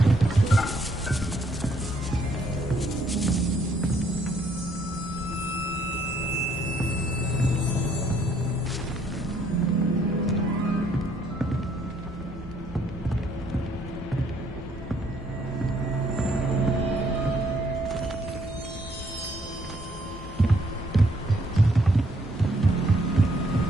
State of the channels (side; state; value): both; normal; correlation 0.67